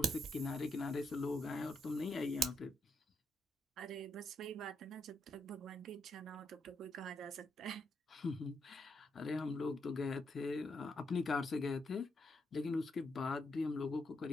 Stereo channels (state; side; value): normal; both; correlation 0.77